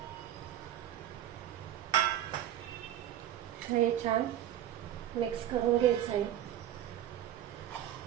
हे छान मिक्स करून घ्यायचं आहे.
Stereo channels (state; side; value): quieter; left; 11.7 dB